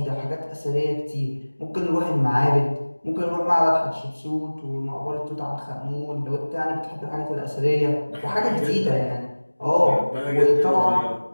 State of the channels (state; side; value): inverted; both; correlation -1.00